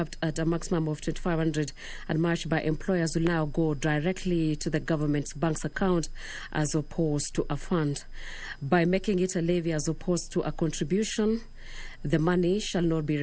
at a maximum of 2,500 and matched by employers, will now go directly to the government's bank's account as opposed to a fund. By making it a levy as opposed to a contribution, the money shall not be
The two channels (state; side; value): identical; both; correlation 1.00